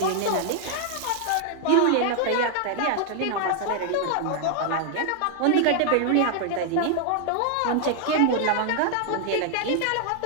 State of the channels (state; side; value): different; both; correlation 0.00